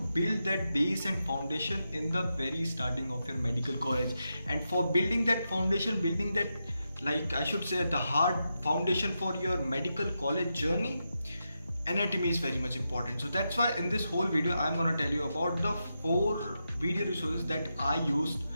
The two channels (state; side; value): inverted; both; correlation -0.87